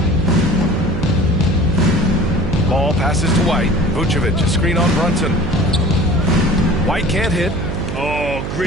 Ball passes to White. Vucevic, a screen on Brunson. White can't hit. Oh,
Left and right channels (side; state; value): right; noise; hum, 5 dB below the sound